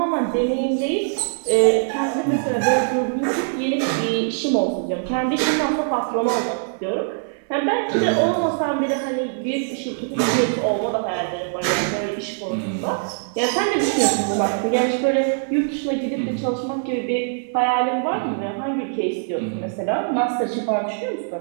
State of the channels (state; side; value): silent; left; 61 dB below the other